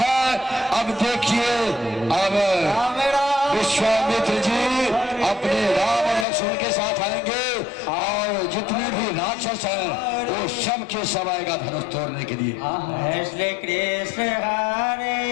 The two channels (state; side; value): drops out; right; at 6.2 s